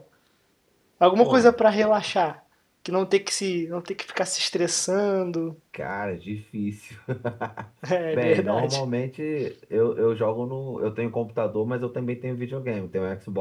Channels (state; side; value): identical; both; correlation 1.00